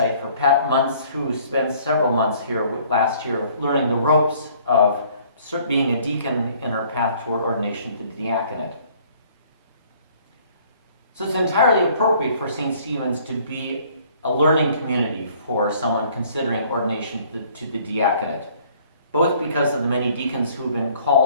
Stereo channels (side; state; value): both; inverted; correlation -0.58